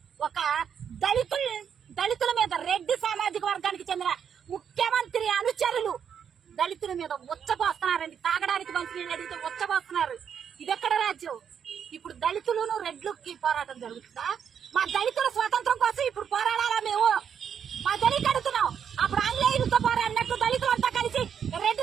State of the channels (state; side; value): quieter; left; 7.9 dB